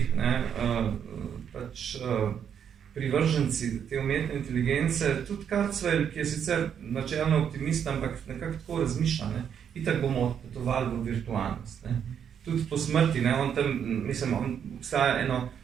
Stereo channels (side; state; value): left; quieter; 8.2 dB